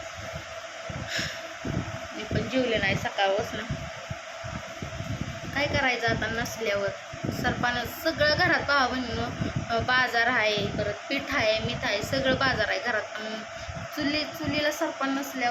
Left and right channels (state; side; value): identical; both; correlation 1.00